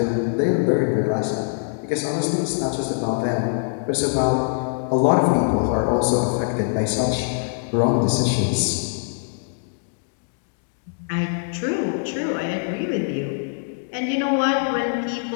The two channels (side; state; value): right; silent; digital silence